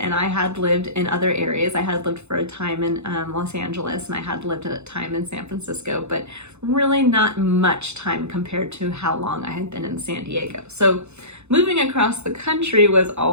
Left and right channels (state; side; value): late; left; 0.81 ms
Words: and I had lived in other areas. I had lived for a time in Los Angeles, and I had lived a time in San Francisco, but really not much time compared to how long I had been in San Diego. So moving across the country was